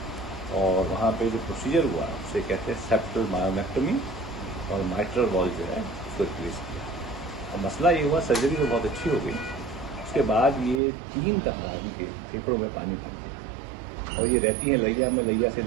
और वहाँ पे जो प्रोसीजर हुआ उसे कहते हैं सेप्टल मायोमेक्टोमी और माइट्रल वॉल जो है उसको रिप्लेस किया। और मसला ये हुआ, सर्जरी तो बहुत अच्छी हो गई, उसके बाद ये 3 दफ़ा इनके फेफड़ों में पानी भर गया और ये रहती हैं लैया में, लैया से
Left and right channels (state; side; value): drops out; left; at 10.8 s